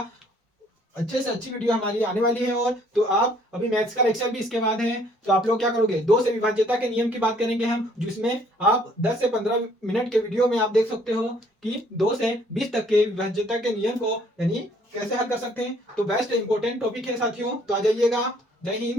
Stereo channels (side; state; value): both; normal; correlation 0.61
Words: अच्छे से अच्छी वीडियो हमारी आने वाली है। और तो आप अभी मैथ्स का लेक्चर भी इसके बाद है, तो आप लोग क्या करोगे, 2 से विभाज्यता के नियम की बात करेंगे हम, जिसमें आप 10 से 15 मिनट के वीडियो में आप देख सकते हो कि 2 से 20 तक के विभाज्यता के नियम को यानी कैसे हल कर सकते हैं। तो बेस्ट इंपॉर्टेंट टॉपिक है साथियों, तो आ जाइएगा। जय